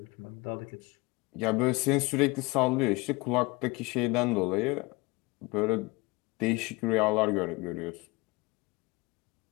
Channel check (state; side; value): quieter; right; 24.5 dB